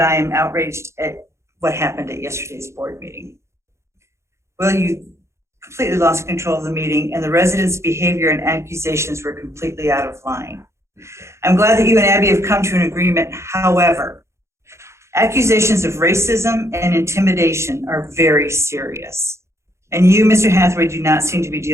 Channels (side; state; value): left; late; 0.13 ms